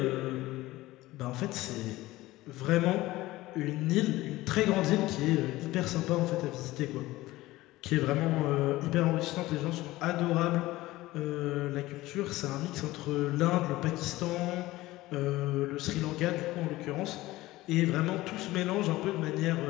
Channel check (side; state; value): right; quieter; 17.9 dB